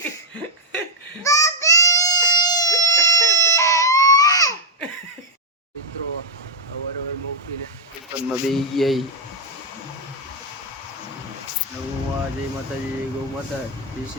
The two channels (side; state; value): both; normal; correlation -0.02